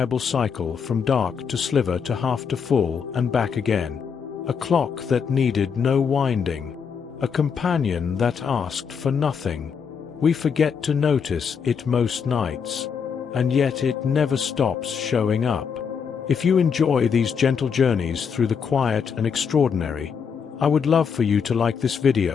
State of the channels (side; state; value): right; quieter; 6.5 dB